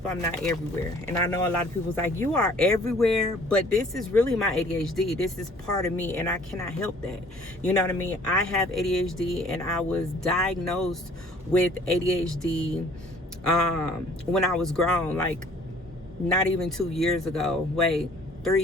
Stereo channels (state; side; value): normal; both; correlation 0.54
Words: I'm not everywhere. And I know a lot of people's like, you are everywhere, but this is really my ADHD. This is part of me, and I cannot help that. You know what I mean? I have ADHD, and I was diagnosed with ADHD when I was grown, like not even 2 years ago. 3